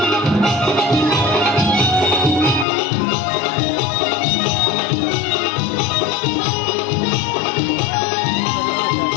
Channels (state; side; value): drops out; right; at 2.7 s